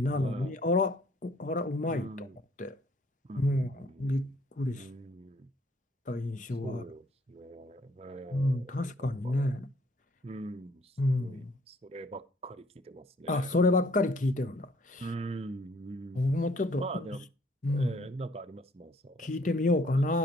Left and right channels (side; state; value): both; normal; correlation 0.62